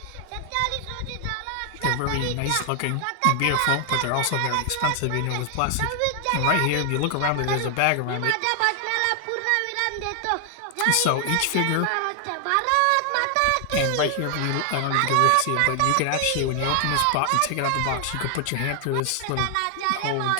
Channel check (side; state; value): both; different; correlation 0.00